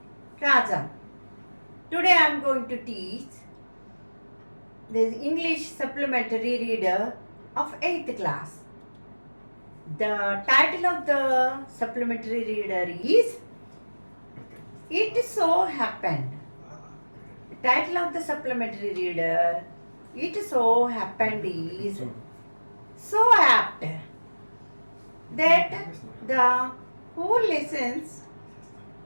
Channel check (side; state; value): both; inverted; correlation -1.00